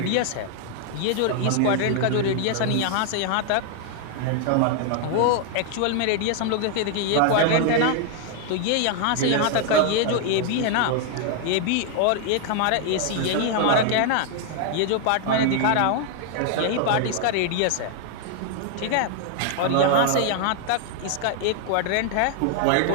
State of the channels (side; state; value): both; different; correlation 0.00